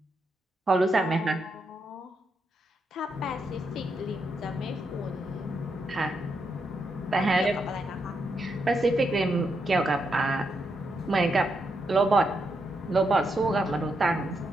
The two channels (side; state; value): both; normal; correlation 0.81